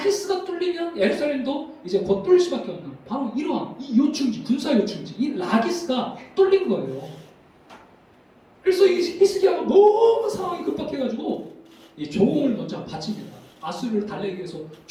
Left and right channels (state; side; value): identical; both; correlation 1.00